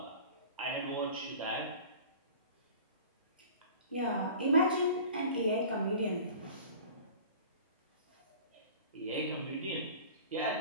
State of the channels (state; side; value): inverted; both; correlation -0.42